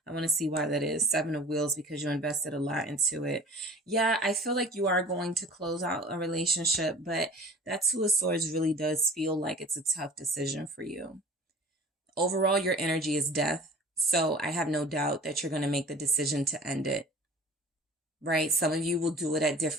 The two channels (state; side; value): normal; both; correlation 0.43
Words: I want to see why that is. Seven of Wheels, because you invested a lot into it. Yeah, I feel like you are going to close out a relationship, but that Two of Swords really does feel like it's a tough decision for you. Overall, your energy is death. So I have no doubt that you're going to make the decision to end it. Right? Some of you will do it at